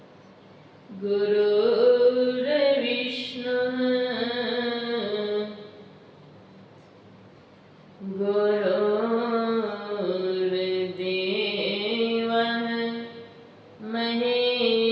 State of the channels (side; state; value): both; identical; correlation 1.00